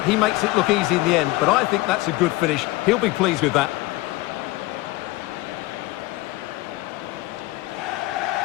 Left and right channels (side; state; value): right; quieter; 19.4 dB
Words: makes it look easy in the end, but I think that's a good finish. He'll be pleased with that.